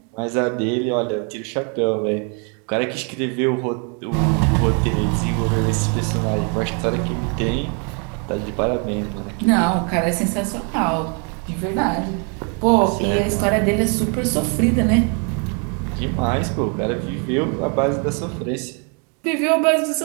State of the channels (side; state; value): left; quieter; 37.8 dB